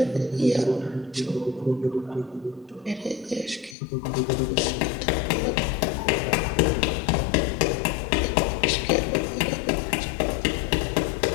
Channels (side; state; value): right; drops out; at 3.8 s